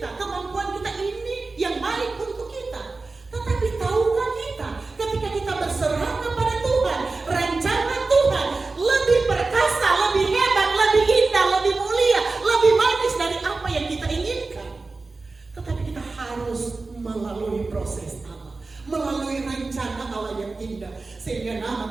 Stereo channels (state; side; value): quieter; left; 3.7 dB